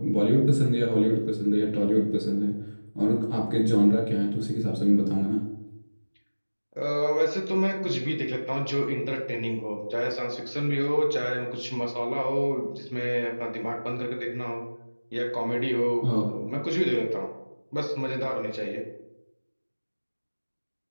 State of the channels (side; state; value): both; inverted; correlation -1.00